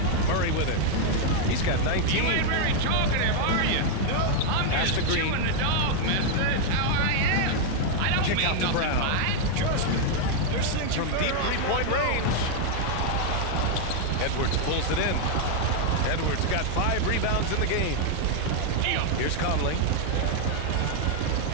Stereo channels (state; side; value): different; both; correlation 0.00